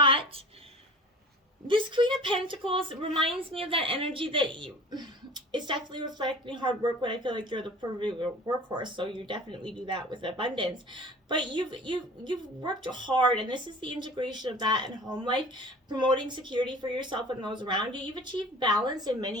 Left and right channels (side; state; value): both; normal; correlation 0.42